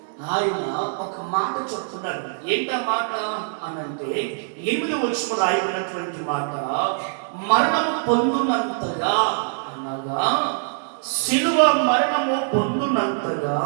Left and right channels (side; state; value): left; silent; digital silence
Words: ఆయన ఒక మాట చెప్తున్నాడు. ఏంటా మాట అనంటే 8వ వచనంలో రాయబడినటువంటి మాట, మరణము పొందునంతగా అనగా శిలువ మరణము పొందునంతగా